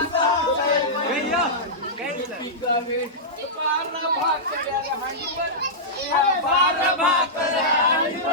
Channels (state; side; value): normal; both; correlation -0.13